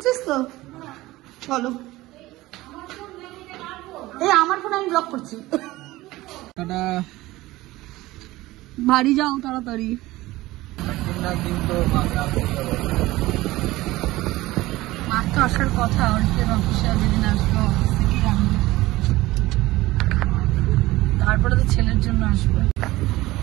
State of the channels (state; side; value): quieter; left; 18.2 dB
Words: তো? চলো। এই আমার ফোন আমি ব্লক করছি। বাড়ি যাও তাড়াতাড়ি। মার তো আসার কথা, অর্থের অফিসে যেদিন আসবো অফিস থেকেই আনবো, তারপরে তো ছেলের জন্য আসবে।